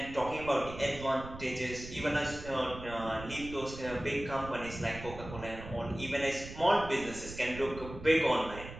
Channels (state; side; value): noise; right; rumble, 12 dB below the sound